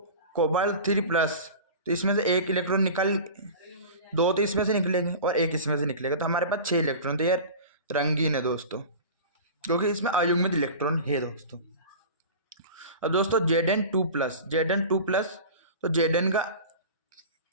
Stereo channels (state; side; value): inverted; both; correlation -0.35